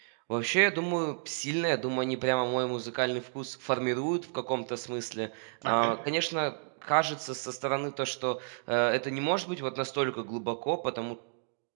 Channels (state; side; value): silent; left; digital silence